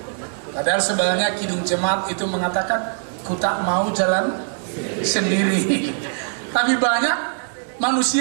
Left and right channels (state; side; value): silent; left; digital silence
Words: Padahal sebenarnya Kidung Jemaat itu mengatakan ku tak mau jalan sendiri. Tapi banyak